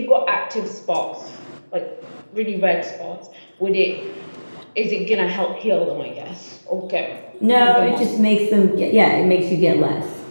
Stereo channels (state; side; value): inverted; both; correlation -1.00